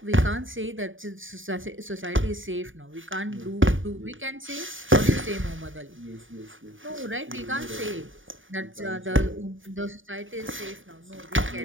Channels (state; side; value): late; left; 0.57 ms